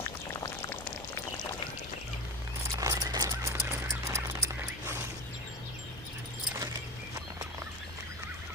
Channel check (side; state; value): both; normal; correlation 0.26